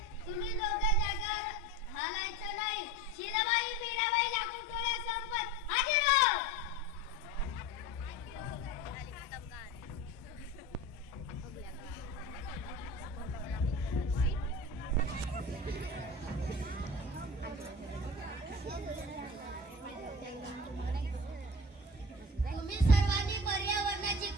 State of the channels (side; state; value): both; normal; correlation 0.33